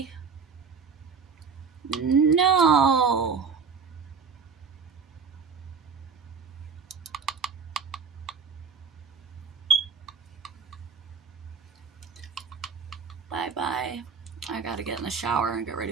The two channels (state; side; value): quieter; left; 5.7 dB